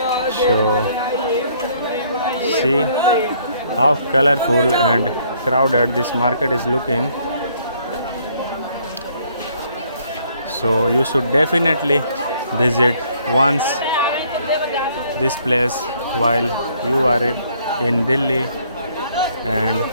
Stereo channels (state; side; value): inverted; both; correlation -0.65